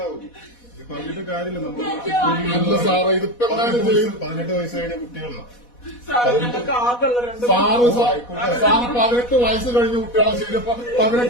ഇത് പറഞ്ഞിട്ട് കാര്യമില്ല. നമ്മൾ അല്ല സാറേ, ഇതിപ്പോ എന്തായാലും ചെയ്യും. 18 വയസ്സ് കഴിഞ്ഞ കുട്ടികളാണ്. സാറ് 18 വയസ്സ് കഴിഞ്ഞ കുട്ടികളെ ശരിയപ്പോ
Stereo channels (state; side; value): late; right; 4.1 ms